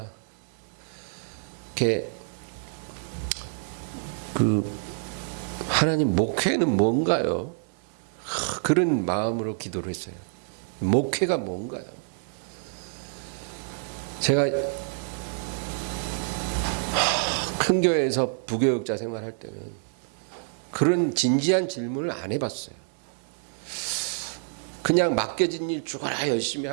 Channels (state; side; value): silent; left; 60 dB below the other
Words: 이렇게 하나님 목회는 뭔가요? 그런 마음으로 기도를 했어요. 목회가 뭔가요? 제가 큰 교회에서 부교육자 생활할 때는 그런 진지한 질문을 안 해봤어요. 그냥 맡겨진 일 죽어라 열심히